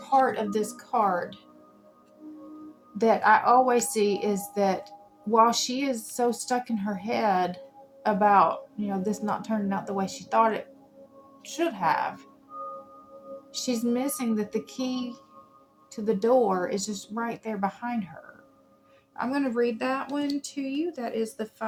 of this card that I always see is that while she is so stuck in her head about, this not turning out the way she thought it should have, she's missing that the key to the door is just right there behind her. I'm going to read that one to you. That is the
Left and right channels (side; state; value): both; identical; correlation 1.00